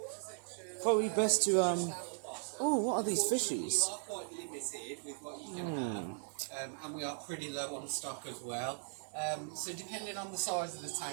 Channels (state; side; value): silent; left; digital silence